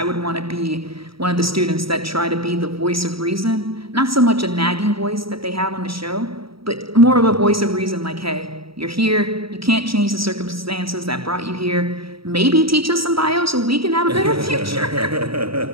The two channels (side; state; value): left; late; 0.75 ms